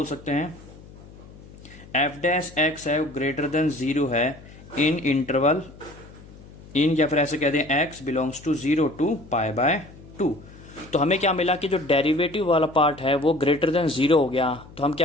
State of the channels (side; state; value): left; noise; hum, 20 dB below the sound